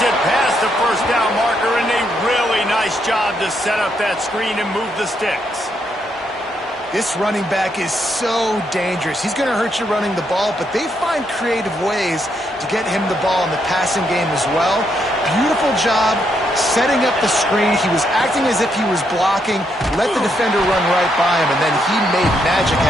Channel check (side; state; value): both; normal; correlation 0.77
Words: it past the 1st down marker, and a really nice job to set up that screen and move the sticks. This running back is so dangerous. He's going to hurt you running the ball, but they find creative ways to get him the ball in the passing game as well. Beautiful job setting up the screen. He was acting as if he was blocking, let the defender run right by him, and then he made magic